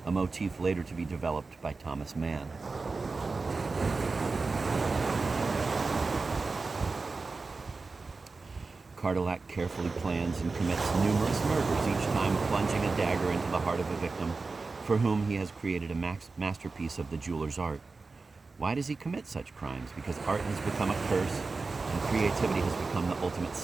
a motif later to be developed by Thomas Mann. Cardillac carefully plans and commits numerous murders, each time plunging a dagger into the heart of a victim for whom he has created a masterpiece of the jeweler's art. Why does he commit such crimes? Because art has become a curse and creativity has become the ultimate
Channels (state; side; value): quieter; left; 4.0 dB